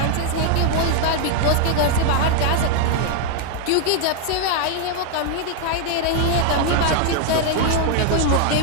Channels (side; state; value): both; different; correlation 0.00